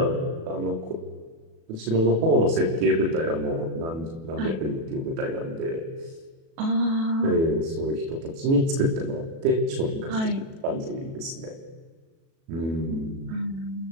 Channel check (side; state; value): left; late; 37 ms